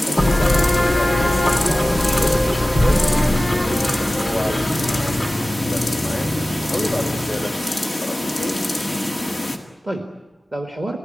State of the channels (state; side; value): normal; both; correlation 0.96